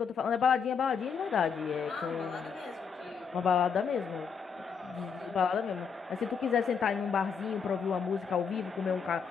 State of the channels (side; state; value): right; quieter; 6.3 dB